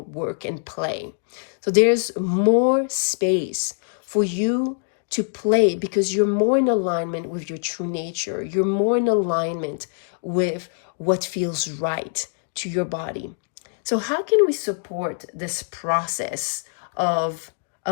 work and play. So there's more space for you to play because you're more in alignment with your true nature. You're more in alignment with what feels right to your body. So how can we support this process of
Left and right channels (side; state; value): right; silent; digital silence